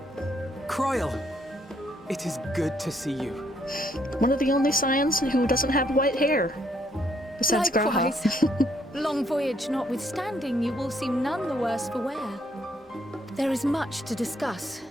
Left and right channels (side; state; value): both; normal; correlation 0.70